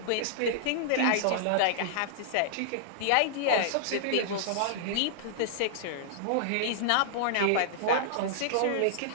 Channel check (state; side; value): different; both; correlation -0.01